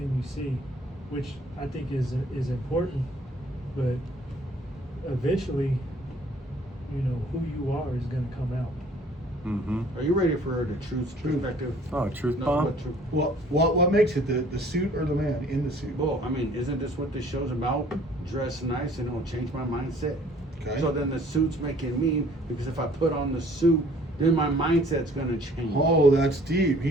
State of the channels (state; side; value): normal; both; correlation 0.55